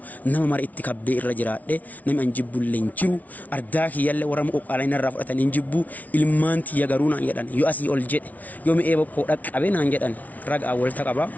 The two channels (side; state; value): right; late; 0.074 ms